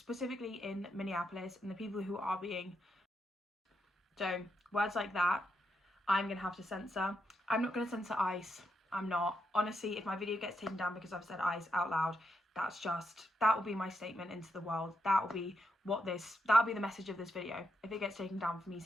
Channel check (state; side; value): normal; both; correlation 0.82